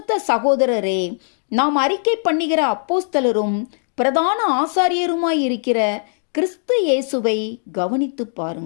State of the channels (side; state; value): right; silent; 66 dB below the other